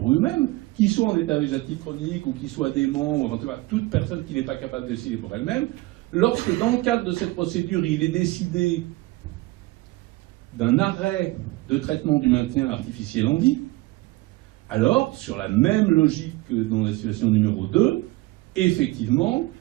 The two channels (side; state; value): left; quieter; 20.4 dB